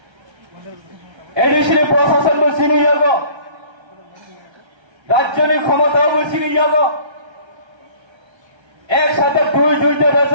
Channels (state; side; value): late; left; 1.3 ms